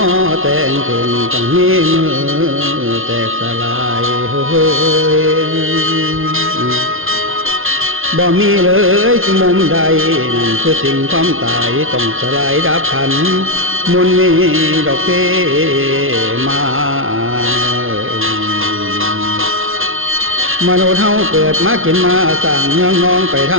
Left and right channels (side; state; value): left; late; 0.60 ms